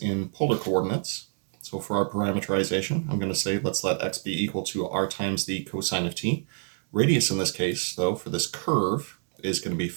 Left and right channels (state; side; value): silent; left; 60 dB below the other